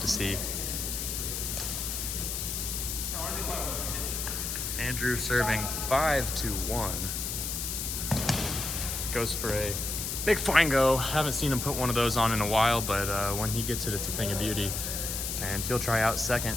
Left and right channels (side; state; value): left; noise; hiss, 3 dB below the sound